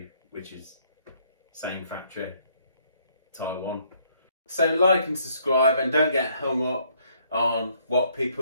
which is same factory, Taiwan. So like and subscribe and don't get hung up on what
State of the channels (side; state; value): both; inverted; correlation -0.67